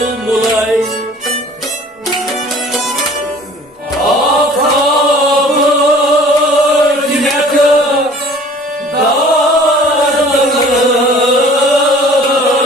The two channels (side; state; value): both; normal; correlation 0.49